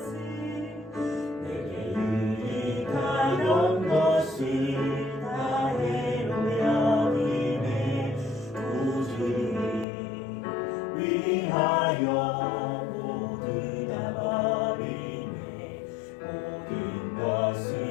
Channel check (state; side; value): drops out; right; at 9.9 s